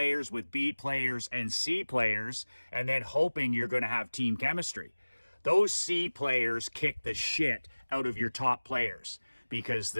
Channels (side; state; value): both; inverted; correlation -1.00